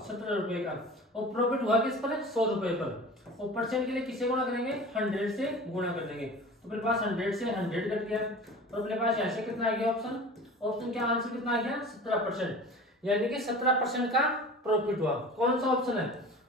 17 रुपए का। और प्रॉफिट हुआ किस पर? 100 रुपए पर। और परसेंट के लिए किसे गुणा करेंगे? 100 से गुणा कर देंगे। तो मेरे पास 100 से 100 कट गया। तो अपने पास यहाँ से कितना आ गया ऑप्शन? ऑप्शन का आंसर कितना आ गया? 17%। यानी कि 17% का प्रॉफिट हुआ। कौन सा ऑप्शन है?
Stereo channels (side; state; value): both; normal; correlation 0.38